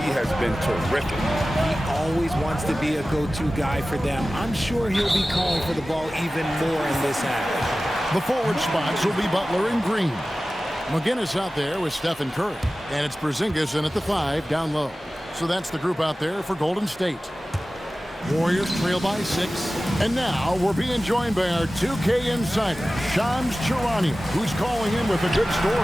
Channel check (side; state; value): both; normal; correlation 0.96